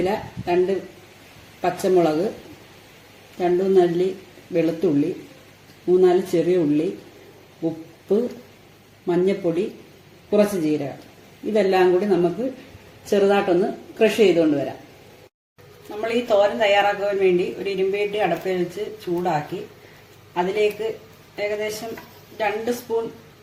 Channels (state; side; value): identical; both; correlation 1.00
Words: 2 പച്ചമുളക്, 2 അല്ലി വെളുത്തുള്ളി, 3-4 ചെറിയ ഉള്ളി, ഉപ്പ്, മഞ്ഞൾപ്പൊടി, കുറച്ച് ജീരകം. ഇതെല്ലാം കൂടി നമുക്ക് ചെറുതായിട്ടൊന്ന് ക്രഷ് ചെയ്തുകൊണ്ട് വരാം. നമ്മൾ ഈ തോരൻ തയ്യാറാക്കുവാൻ വേണ്ടി ഒരു ഇരുമ്പേട്ടി അടുപ്പിൽ വെച്ച് ചൂടാക്കി അതിലേക്ക് ഏകദേശം 2 സ്പൂൺ